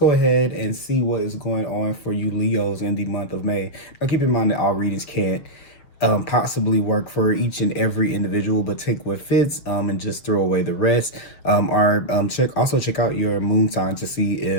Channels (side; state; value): right; late; 6.8 ms